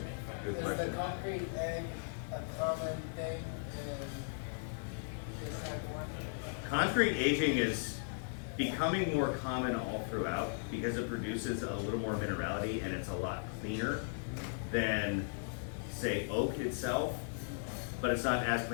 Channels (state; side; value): silent; right; digital silence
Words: Good Is question. the concrete egg a common thing in this type of wine? Concrete aging is becoming more common all throughout because it produces a little more minerality and it's a lot cleaner than, say, oak itself, but it's not as